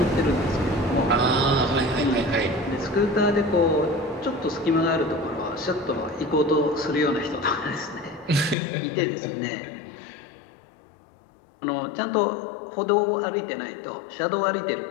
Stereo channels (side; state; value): right; drops out; at 8.6 s